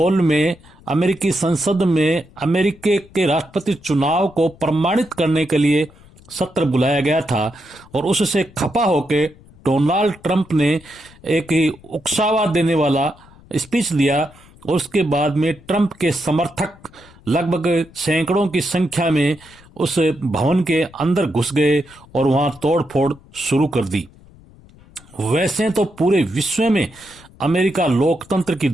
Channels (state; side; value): noise; left; rumble, 25 dB below the sound